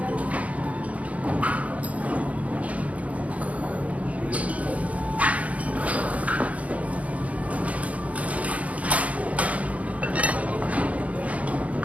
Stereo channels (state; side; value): late; left; 0.067 ms